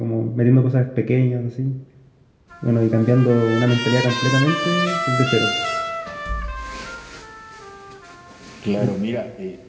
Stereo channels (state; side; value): identical; both; correlation 1.00